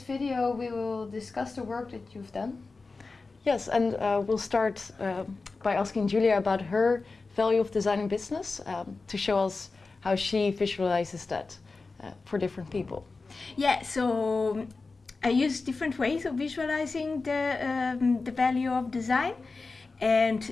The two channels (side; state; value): right; quieter; 3.9 dB